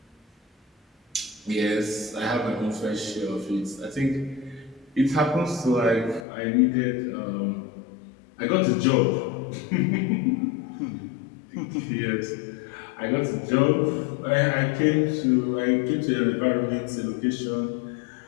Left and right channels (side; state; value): right; drops out; at 6.2 s